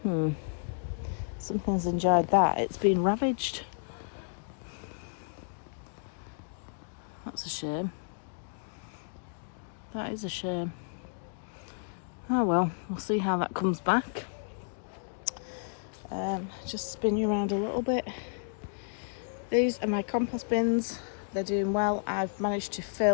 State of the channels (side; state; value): right; silent; digital silence